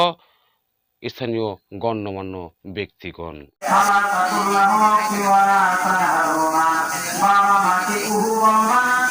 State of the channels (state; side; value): identical; both; correlation 1.00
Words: স্থানীয় গণ্যমান্য ব্যক্তিগণ।